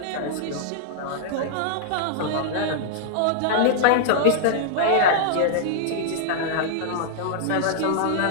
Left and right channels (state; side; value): different; both; correlation -0.01